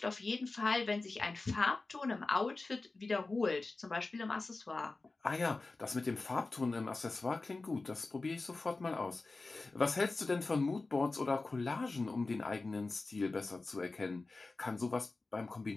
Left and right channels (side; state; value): right; quieter; 3.5 dB